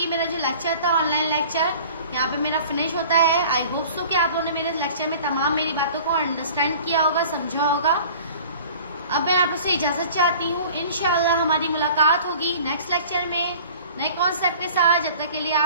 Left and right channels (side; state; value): both; inverted; correlation -0.46